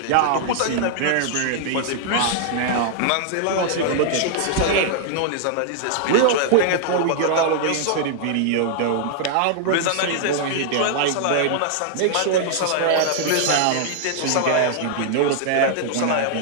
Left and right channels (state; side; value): different; both; correlation -0.01